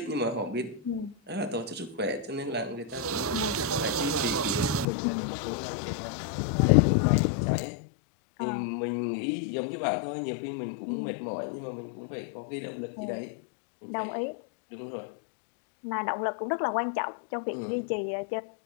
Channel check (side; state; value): right; drops out; at 4.9 s